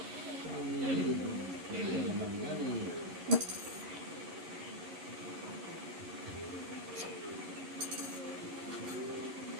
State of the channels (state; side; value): late; left; 11 ms